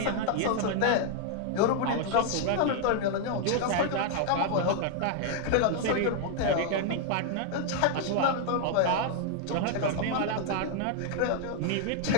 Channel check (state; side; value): different; both; correlation 0.00